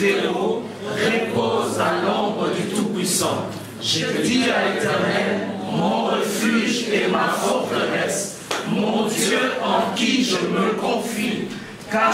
repose à l'ombre du Tout-Puissant. Je dis à l'Éternel, mon refuge et ma forteresse, mon Dieu en qui je me confie.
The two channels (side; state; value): both; identical; correlation 1.00